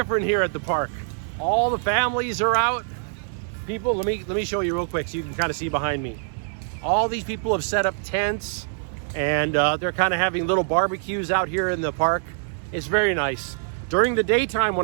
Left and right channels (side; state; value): left; silent; 62 dB below the other